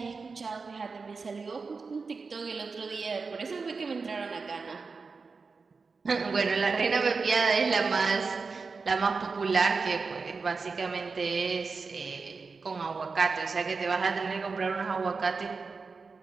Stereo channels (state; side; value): quieter; left; 4.6 dB